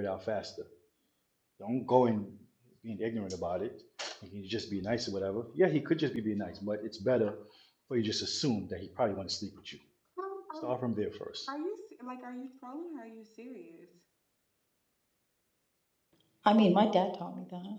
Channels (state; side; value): identical; both; correlation 1.00